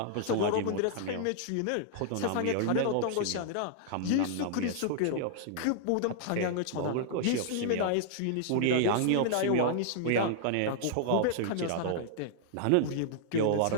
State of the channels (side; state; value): both; different; correlation -0.01